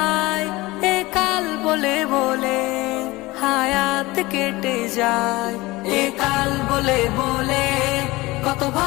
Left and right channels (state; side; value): quieter; right; 20.7 dB